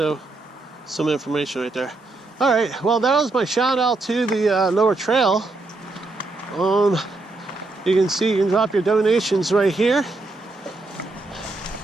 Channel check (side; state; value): left; quieter; 3.2 dB